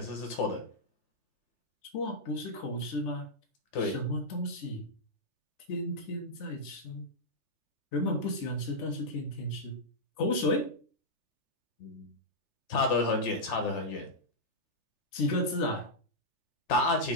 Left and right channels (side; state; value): right; late; 3.4 ms